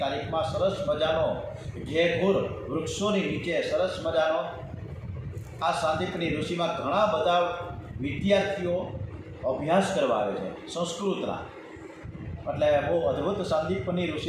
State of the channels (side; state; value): both; identical; correlation 1.00